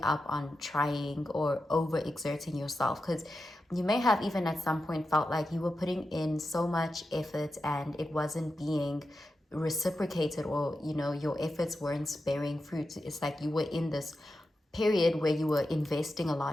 up on trying or overexerting yourself, because you may have even at some point felt like you were putting in so much effort and it wasn't being reciprocated, or your efforts weren't bearing fruit. It's like you were in this period where you were investing a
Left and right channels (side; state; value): both; normal; correlation 0.90